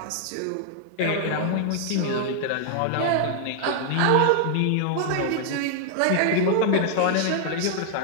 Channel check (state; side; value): different; both; correlation -0.01